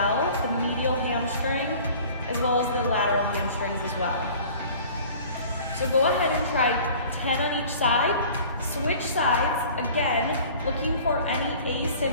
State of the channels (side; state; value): both; inverted; correlation -0.46